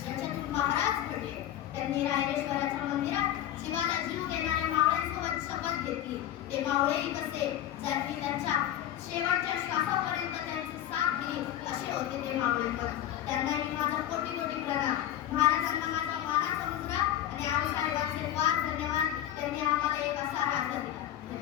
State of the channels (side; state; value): right; quieter; 11.9 dB